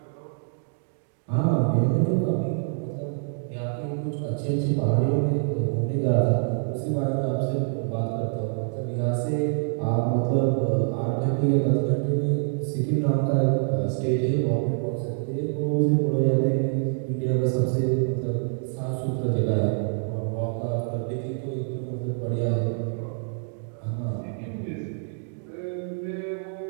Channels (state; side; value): silent; left; digital silence